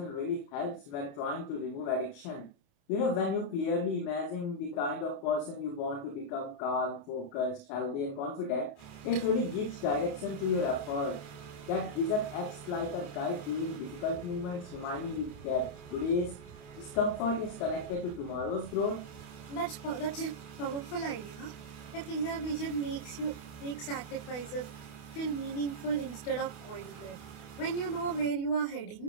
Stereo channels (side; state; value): right; late; 28 ms